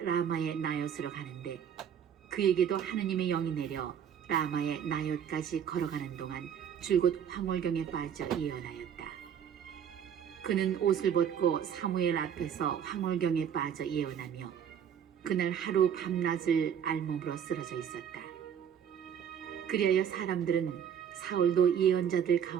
라마의 나요스로 가는데 그에게도 하느님의 영이 내려 라마의 나요까지 걸어가는 동안 줄곧 황홀경에 빠져 예언하였다. 그는 옷을 벗고 사무엘 앞에서 황홀경에 빠져 예언하며 그날 하루 밤낮을 알몸으로 쓰러져 있었다. 그리하여 사람들은 사울도 예언자들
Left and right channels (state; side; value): quieter; left; 8.5 dB